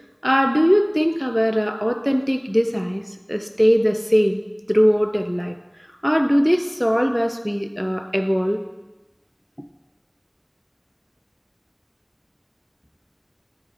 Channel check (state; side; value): identical; both; correlation 1.00